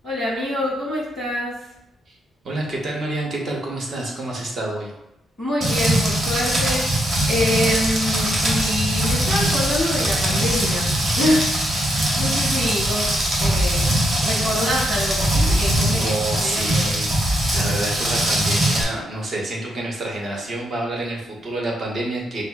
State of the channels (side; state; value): both; normal; correlation 0.79